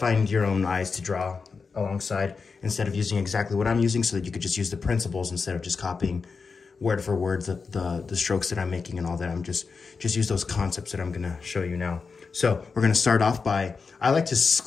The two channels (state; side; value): quieter; right; 4.9 dB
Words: your own eyes to draw alongside instead of using exactly what I'm using, so that you could just use the principles instead of just copying word for word the strokes that I'm making and all that. I'm just use those concepts that I'm gonna show you now. So we're gonna start off by, I like to